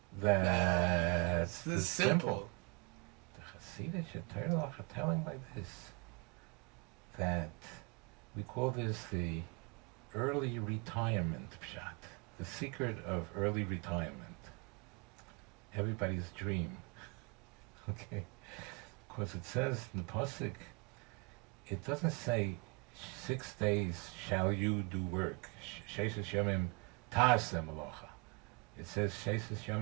That's the simple. The Chassidic Torah are telling like this, that we call this the early retirement pshat, the secret of early retirement. Everybody's dream. Okay? Because it says in the pasuk, it doesn't say 6 days shall you do work. Sheishis Yomim Ta'aseh Malocha. It says Sheishis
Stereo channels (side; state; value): left; quieter; 30.5 dB